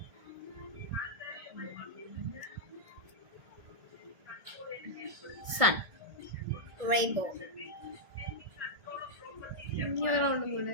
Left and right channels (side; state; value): left; late; 1.6 ms